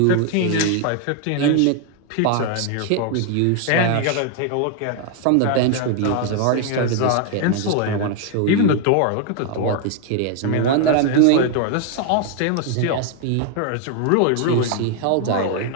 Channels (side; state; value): both; different; correlation 0.00